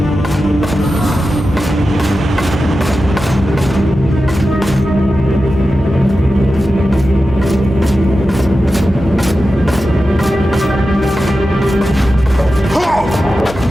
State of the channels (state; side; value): noise; right; hum, 13 dB below the sound